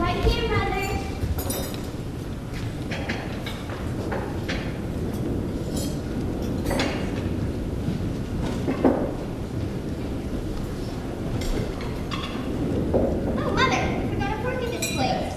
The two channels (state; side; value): identical; both; correlation 1.00